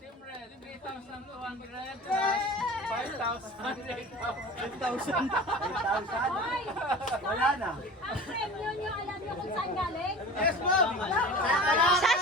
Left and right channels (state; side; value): normal; both; correlation 0.38